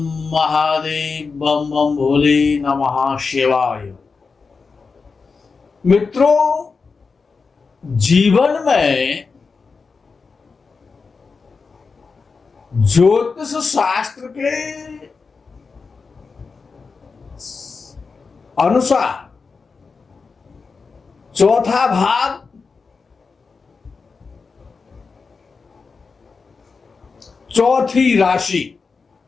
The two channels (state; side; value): quieter; right; 4.7 dB